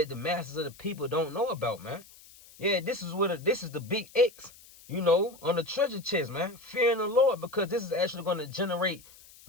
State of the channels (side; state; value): left; noise; hiss, 22 dB below the sound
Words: the masses of the people don't know about, man. Yeah, this is the big X, you know, on the treasure chest, man. Fearing the Lord, because this is actually going to generate